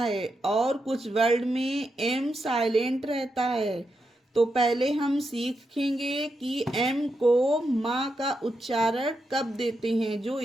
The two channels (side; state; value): both; normal; correlation 0.85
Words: और कुछ वर्ड में एम साइलेंट रहता है। तो पहले हम सीखेंगे कि एम को माँ का उच्चारण कब देते हैं, जो